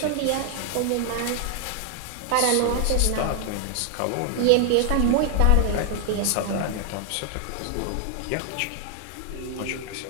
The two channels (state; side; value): different; both; correlation 0.00